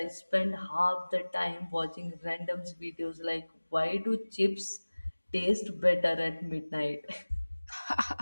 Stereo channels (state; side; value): inverted; both; correlation -1.00